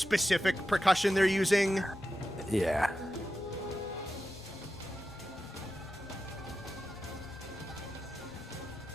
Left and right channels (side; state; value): both; normal; correlation 0.91